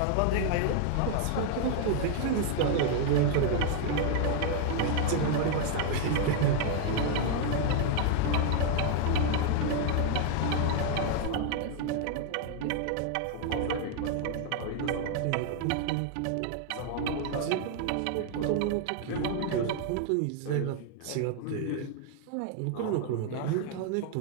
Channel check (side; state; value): both; different; correlation 0.00